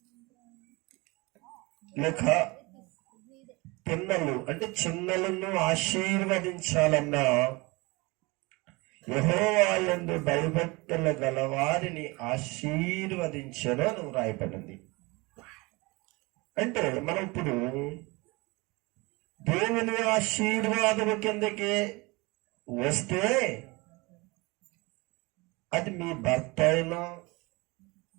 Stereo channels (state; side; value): quieter; left; 24.8 dB